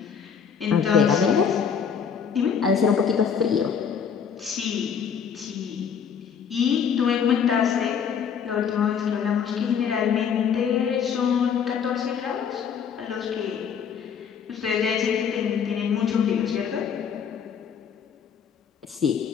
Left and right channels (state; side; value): quieter; right; 7.2 dB